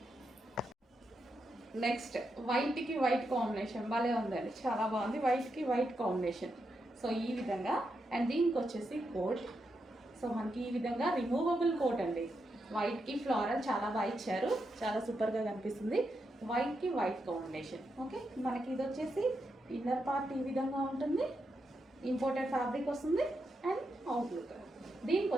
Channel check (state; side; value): normal; both; correlation 0.84